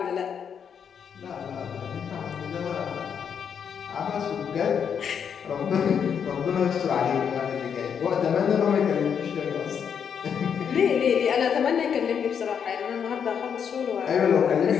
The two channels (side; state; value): right; quieter; 7.5 dB